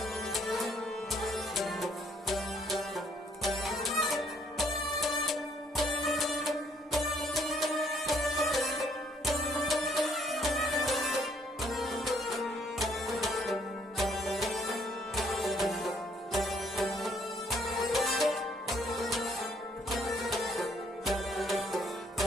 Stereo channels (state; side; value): normal; both; correlation 0.66